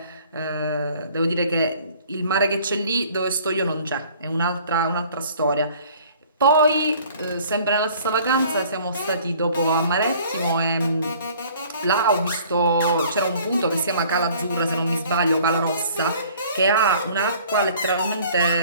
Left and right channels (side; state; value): both; inverted; correlation -0.53